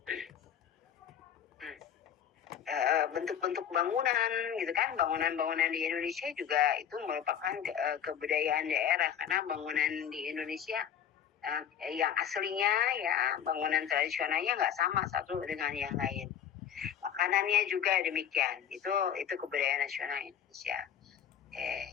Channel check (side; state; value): right; quieter; 9.0 dB